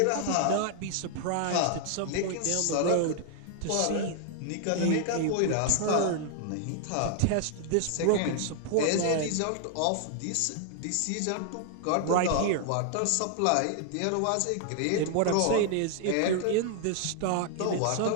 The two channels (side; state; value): both; different; correlation 0.00